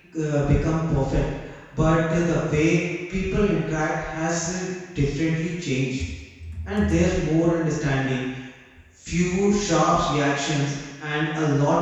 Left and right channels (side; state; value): both; identical; correlation 1.00